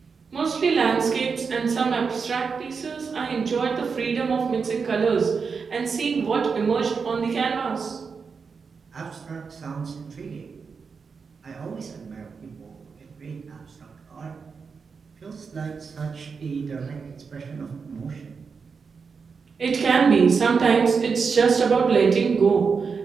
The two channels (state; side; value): quieter; left; 5.4 dB